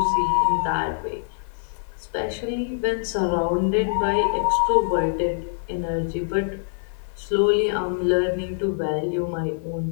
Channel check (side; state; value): right; silent; digital silence